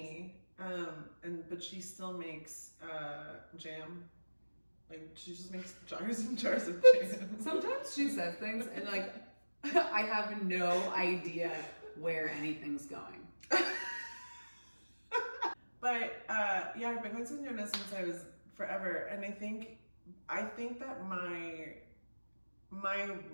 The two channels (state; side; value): inverted; both; correlation -1.00